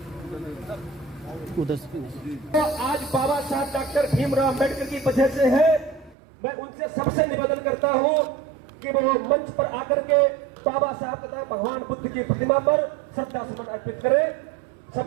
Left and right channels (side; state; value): left; drops out; at 6.2 s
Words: तो आज बाबा साहब डॉक्टर भीमराव अम्बेडकर की वजह से है। मैं उनसे सबसे निवेदन करता हूं कि वो मंच पर आकर के बाबा साहब तथा भगवान बुद्ध की प्रतिमा पर श्रद्धा सुमन अर्पित करें।